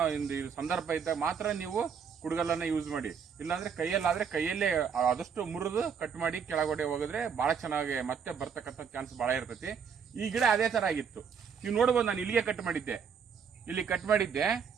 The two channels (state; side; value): quieter; left; 6.7 dB